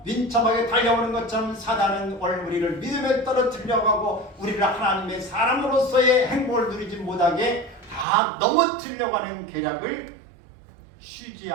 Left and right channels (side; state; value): left; drops out; at 8.1 s